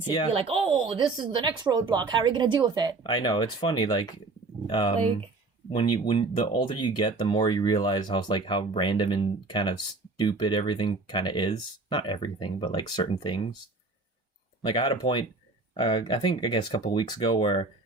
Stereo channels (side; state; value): left; quieter; 3.6 dB